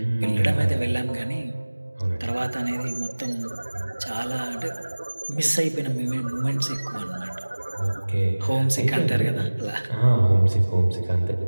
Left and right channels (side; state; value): both; inverted; correlation -1.00